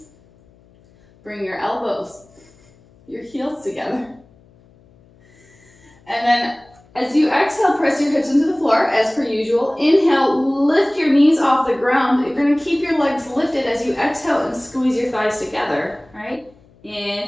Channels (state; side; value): noise; left; hum, 29 dB below the sound